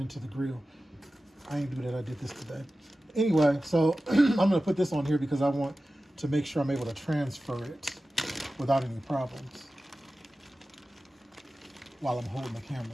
the grill. I ain't do that, I did this today. Anyway, so I'm gonna put this on here because I want to make sure I'm able to transfer it without any problems while I'm holding the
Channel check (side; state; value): both; normal; correlation 0.95